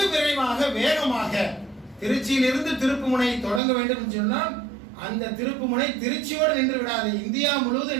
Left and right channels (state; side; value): drops out; left; at 3.6 s